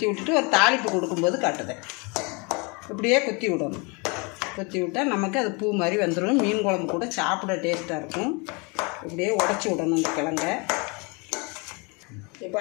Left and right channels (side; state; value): right; quieter; 30.5 dB